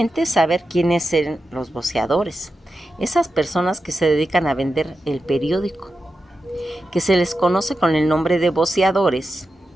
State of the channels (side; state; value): both; normal; correlation 0.91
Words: saber quiénes eran los voceadores, esas personas que se dedican a vender el periódico, que se les conoce con el nombre de voceadores.